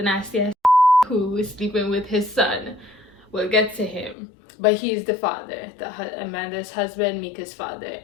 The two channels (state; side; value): drops out; right; at 4.2 s